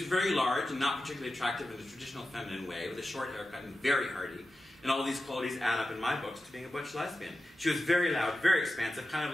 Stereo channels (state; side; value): normal; both; correlation 0.92